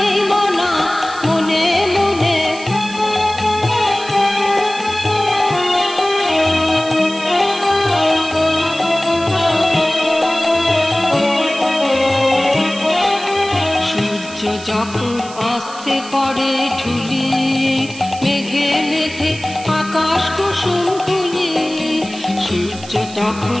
মনা মনে মনে। সূর্য যখন অস্তে পড়ে ঢুলি, মেঘে মেঘে আকাশ কুসুম তুলি। সূর্য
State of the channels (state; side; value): noise; right; hiss, 16 dB below the sound